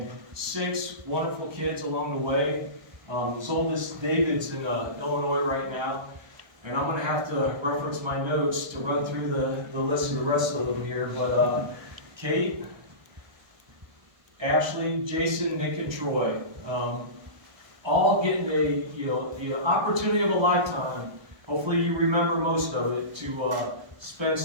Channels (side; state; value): left; late; 1.3 ms